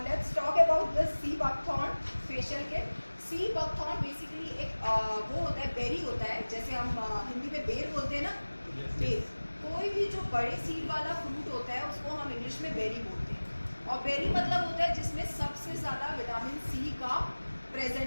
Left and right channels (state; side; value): inverted; both; correlation -1.00